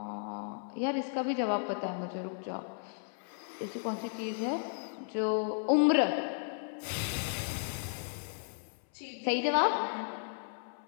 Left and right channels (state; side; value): silent; right; 55 dB below the other